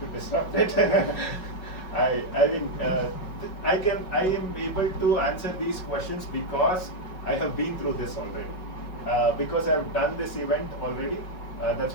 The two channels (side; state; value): right; late; 5.4 ms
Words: disrupt it. I mean, I am able to answer these questions because I have been through this already. Because I have done this event already, that's